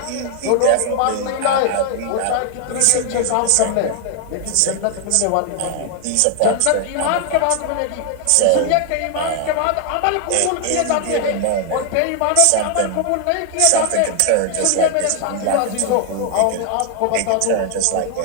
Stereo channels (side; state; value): both; different; correlation 0.00